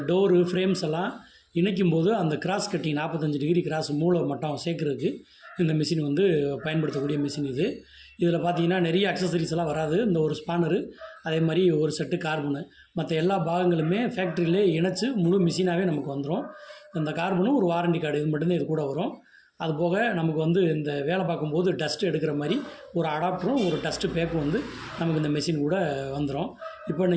டோரு ஃப்ரேம்ஸ் எல்லாம் இணைக்கும் போது அந்த கிராஸ் கட்டிங் 45 டிகிரி கிராஸ் மூளை மட்டம் சேர்க்குறதுக்கு இந்த மிஷின் வந்து பயன்படுத்தக்கூடிய மிஷின் இது. இதில் பார்த்தீங்கன்னா நிறைய அக்சசரிஸ் எல்லாம் வராது. இந்த ஒரு ஸ்பானரு, அதே மாதிரி ஒரு செட்டு கார்பனு, மற்ற எல்லா பாகங்களுமே ஃபேக்ட்ரியிலே இணைச்சி முழு மிஷினாகவே நமக்கு வந்துடும். இந்த கார்பனும் ஒரு வாரண்டி கார்டு இது மட்டும்தான் இது கூட வரும். அது போக நமக்கு வந்து இந்த வேலை பார்க்கும்போது டஸ்ட் எடுக்கிற மாதிரி ஒரு அடாப்டரும் ஒரு டஸ்ட்டு பேக்கும் வந்து நமக்கு இந்த மெஷின் கூட வந்துடும். இப்போ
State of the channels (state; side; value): identical; both; correlation 1.00